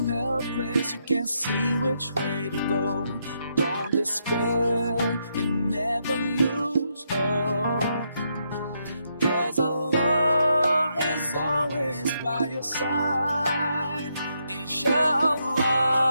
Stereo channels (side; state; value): both; inverted; correlation -0.79